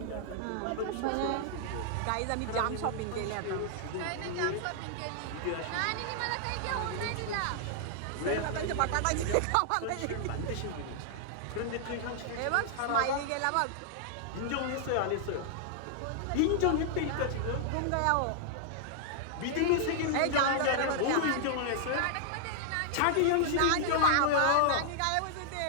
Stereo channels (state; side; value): different; both; correlation -0.01